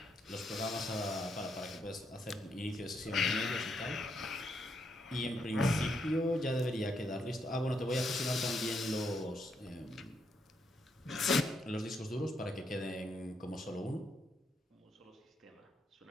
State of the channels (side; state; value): both; normal; correlation 0.77